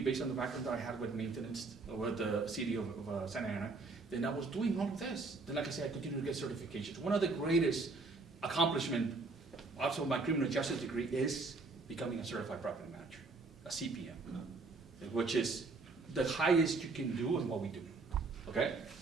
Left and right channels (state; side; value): quieter; left; 3.8 dB